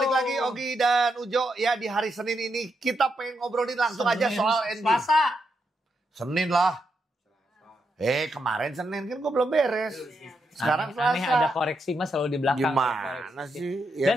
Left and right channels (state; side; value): normal; both; correlation 0.82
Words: lagi Ogi dan Ujo ya di hari Senin ini kita pengen ngobrolin langsung aja soal NBA. Selasa. Senin lah. Kemarin Senin kan gue belum beres. Sekarang aneh ada koreksi mas selalu di belakang. Gimana sih? Dan